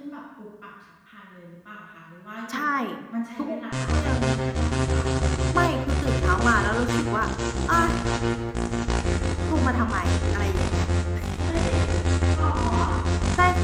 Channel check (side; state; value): both; identical; correlation 1.00